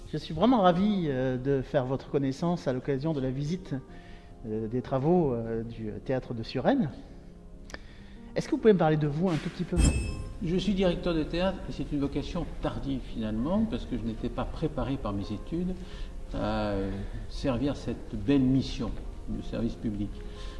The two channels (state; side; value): identical; both; correlation 1.00